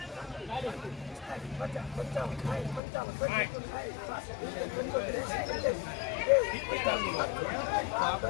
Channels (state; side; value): drops out; right; at 2.8 s